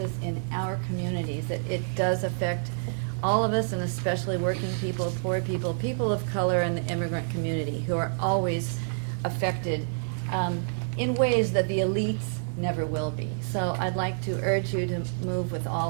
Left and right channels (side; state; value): left; silent; digital silence